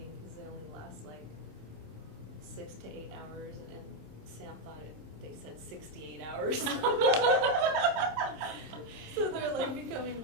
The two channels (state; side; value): late; left; 26 ms